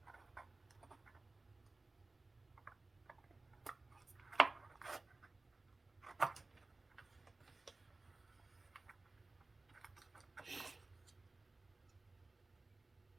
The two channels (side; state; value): left; quieter; 3.3 dB